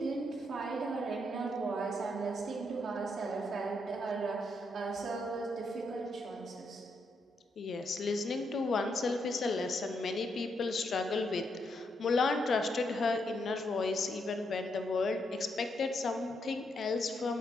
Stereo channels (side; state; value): both; normal; correlation 0.78